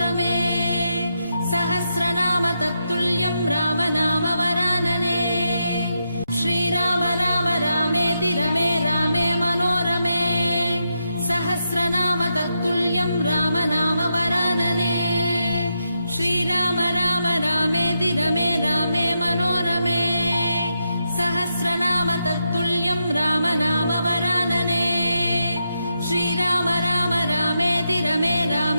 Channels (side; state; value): both; inverted; correlation -0.84